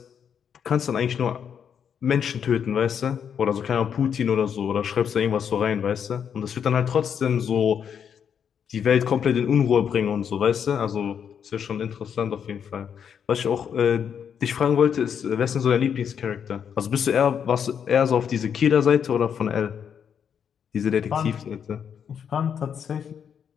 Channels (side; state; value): right; quieter; 7.8 dB